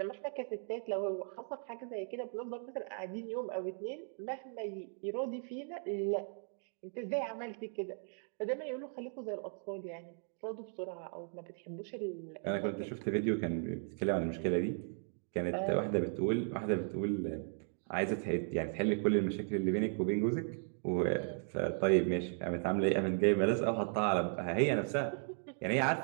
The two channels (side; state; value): left; silent; 53 dB below the other